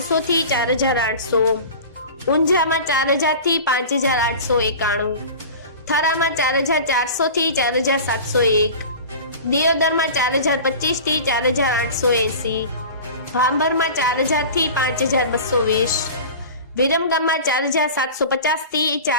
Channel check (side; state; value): both; inverted; correlation -0.35